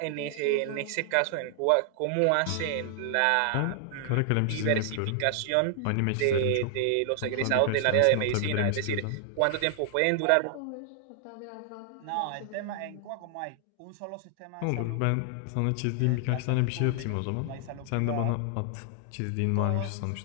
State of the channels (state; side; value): different; both; correlation 0.00